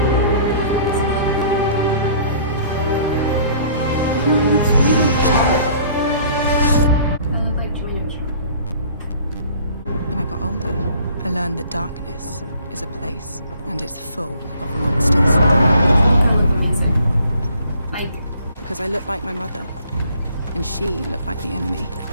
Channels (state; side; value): inverted; both; correlation -0.55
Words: I look like Jimmy Neutron. When I got older, I learned that darkness is a place, and it's full of monsters. I look amazing. Like, Because I look like my mother, and she looked like the enemy.